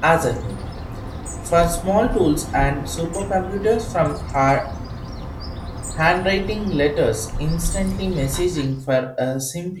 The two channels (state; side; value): identical; both; correlation 1.00